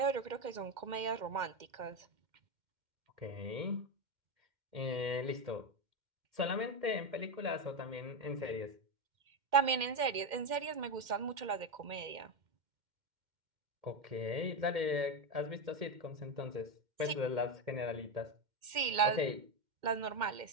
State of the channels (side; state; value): left; late; 2.1 ms